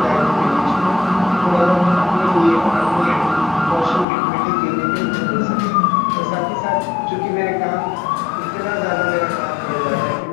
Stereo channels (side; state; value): right; drops out; at 4.0 s